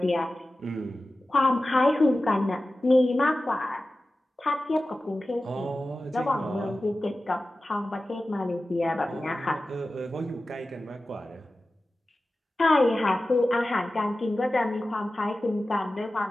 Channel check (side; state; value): both; normal; correlation 0.95